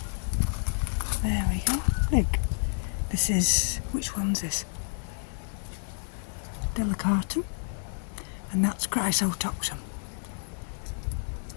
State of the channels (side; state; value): right; silent; 56 dB below the other